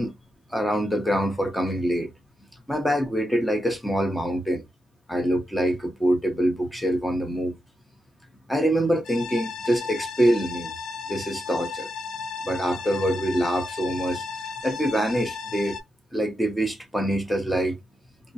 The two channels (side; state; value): both; normal; correlation 0.86